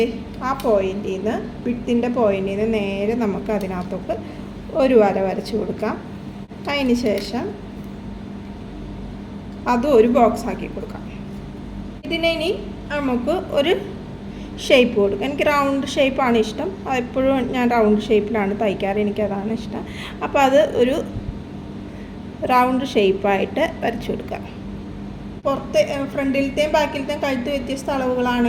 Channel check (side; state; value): both; identical; correlation 1.00